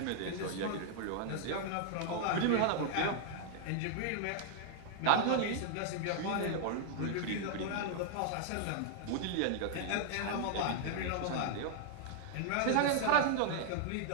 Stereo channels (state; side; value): different; both; correlation 0.00